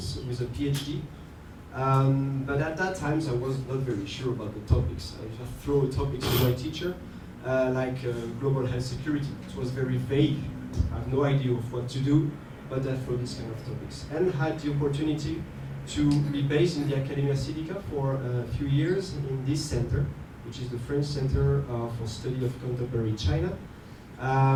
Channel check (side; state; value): both; identical; correlation 1.00